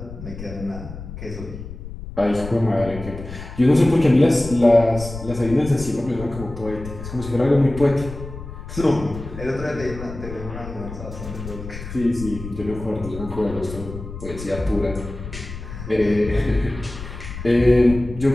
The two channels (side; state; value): left; noise; rumble, 11 dB below the sound